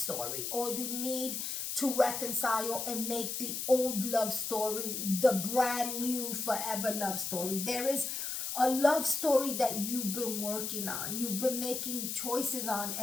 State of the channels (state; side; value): noise; left; hiss, 3 dB below the sound